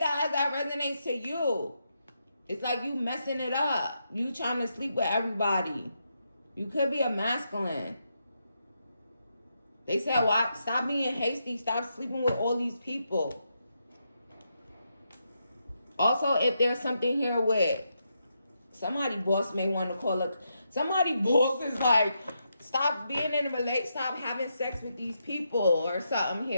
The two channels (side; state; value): both; inverted; correlation -0.82